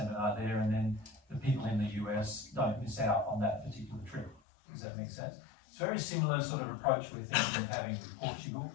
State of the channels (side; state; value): right; drops out; at 4.4 s